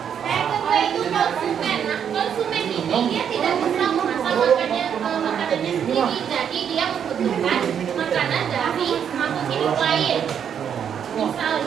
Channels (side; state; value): left; quieter; 8.3 dB